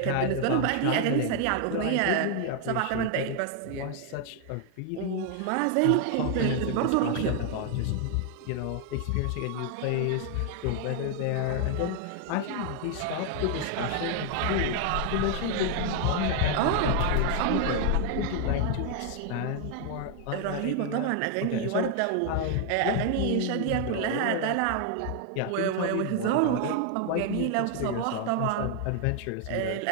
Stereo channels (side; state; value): both; different; correlation 0.00